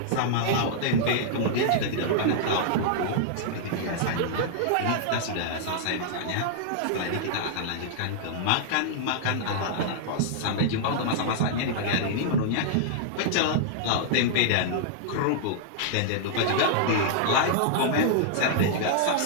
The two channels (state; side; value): different; both; correlation -0.01